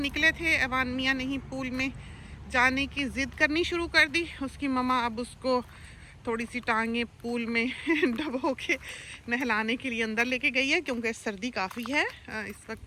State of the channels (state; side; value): identical; both; correlation 1.00